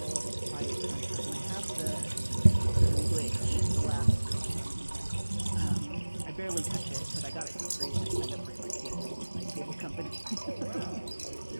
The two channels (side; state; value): both; inverted; correlation -1.00